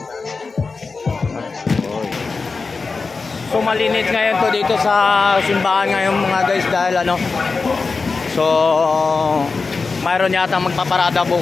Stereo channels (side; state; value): right; quieter; 4.3 dB